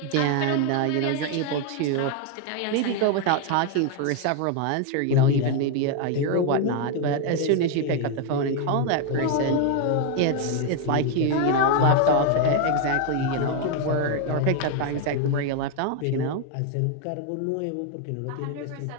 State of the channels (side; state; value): both; different; correlation 0.01